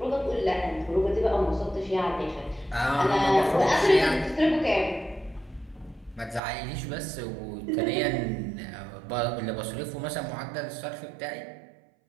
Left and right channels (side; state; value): left; drops out; at 6.4 s